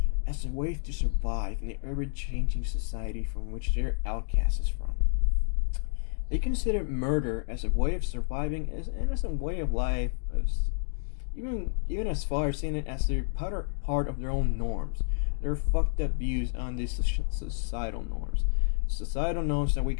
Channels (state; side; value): silent; right; digital silence